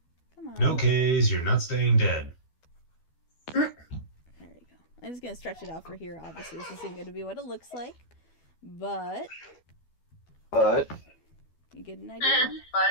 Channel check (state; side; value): late; right; 12 ms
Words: Come on. No K's, you're not staying dead. There you go. I'm just gonna stretch it out for here. Obviously, this isn't gonna be what it looks like, but you get an idea.